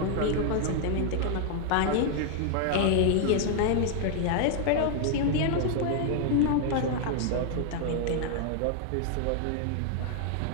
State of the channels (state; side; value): different; both; correlation 0.00